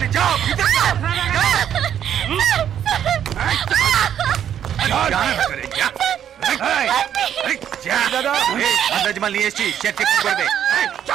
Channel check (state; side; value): quieter; left; 9.6 dB